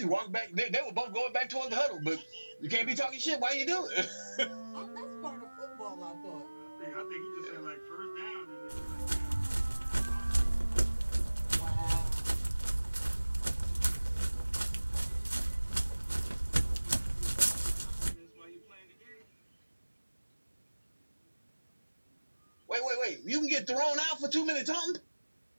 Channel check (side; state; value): both; inverted; correlation -1.00